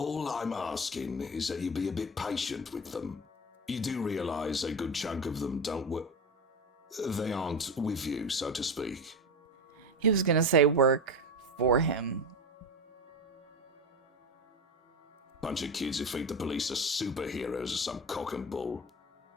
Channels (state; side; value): normal; both; correlation 0.21